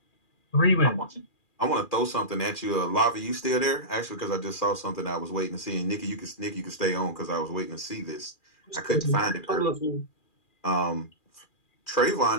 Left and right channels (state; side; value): late; right; 2.4 ms